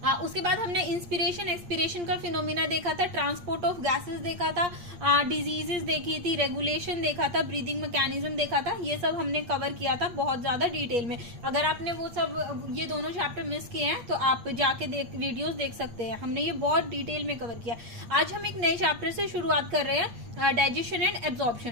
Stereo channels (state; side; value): late; left; 8.6 ms